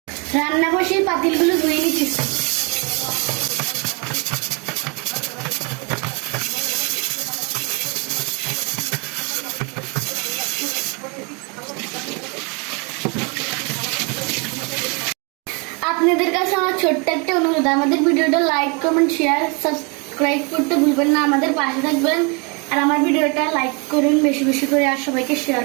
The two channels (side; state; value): left; quieter; 32.5 dB